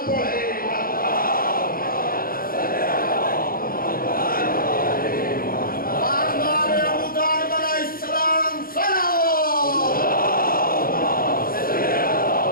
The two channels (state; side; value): late; right; 0.42 ms